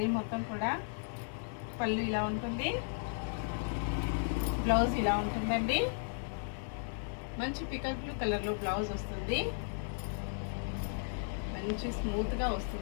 మొత్తం కూడా. పళ్ళు ఇలా ఉంటుంది, బ్లౌజ్ ఇలా ఉంటుందండి. మంచి పికల్ బ్లూ కలర్లో బ్లౌజ్ వస్తుంది. మంచి స్మూత్గా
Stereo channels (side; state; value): right; silent; 54 dB below the other